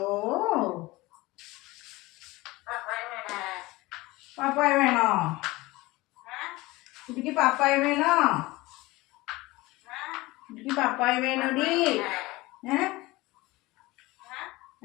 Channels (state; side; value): quieter; right; 20.7 dB